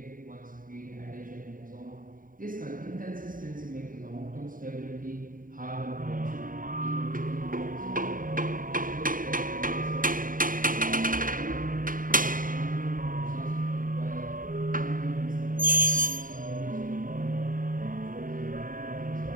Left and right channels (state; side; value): late; left; 0.40 ms